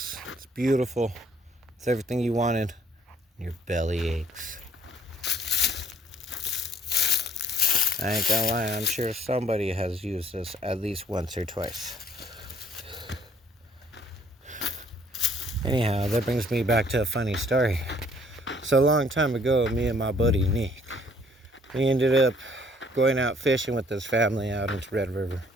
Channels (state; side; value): normal; both; correlation 0.61